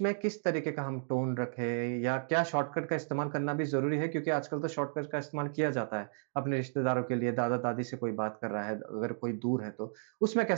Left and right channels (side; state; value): left; silent; digital silence